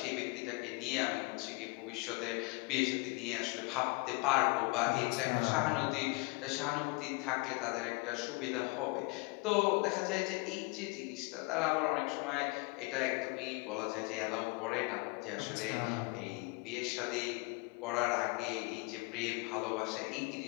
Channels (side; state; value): right; quieter; 27.8 dB